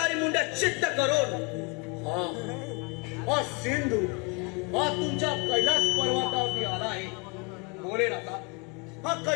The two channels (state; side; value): quieter; right; 30.5 dB